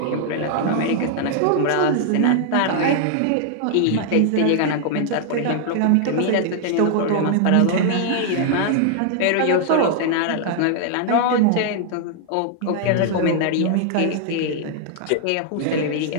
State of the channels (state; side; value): different; both; correlation 0.00